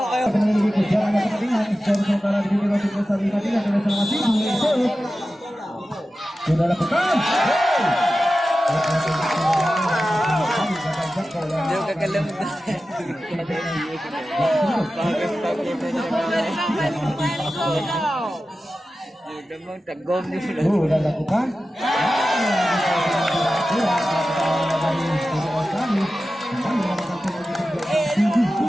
Sudah lakukan. Dia kekelem. Dia mau tegom ni. Sudah lakukan.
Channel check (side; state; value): both; normal; correlation 0.94